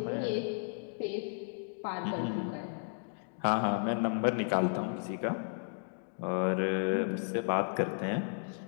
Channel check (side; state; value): right; silent; digital silence